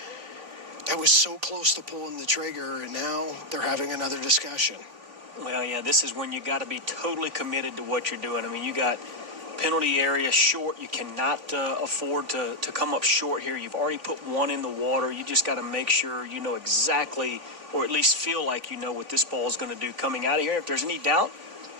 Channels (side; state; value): left; late; 3.5 ms